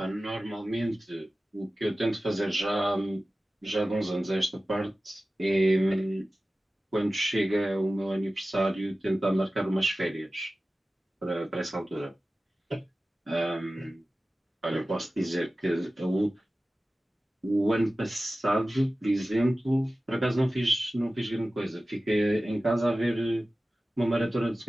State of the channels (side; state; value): both; normal; correlation 0.96